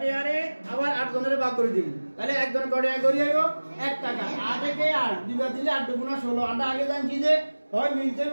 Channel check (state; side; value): inverted; both; correlation -1.00